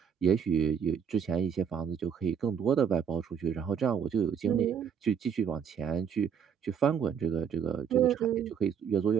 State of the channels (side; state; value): left; quieter; 7.5 dB